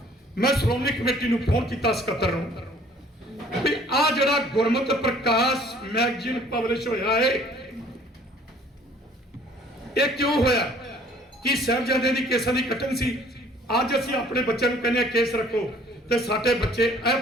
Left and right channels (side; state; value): both; normal; correlation 0.56